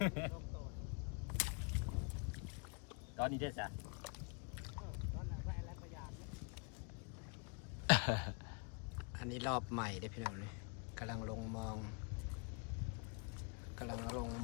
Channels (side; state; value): right; quieter; 36.2 dB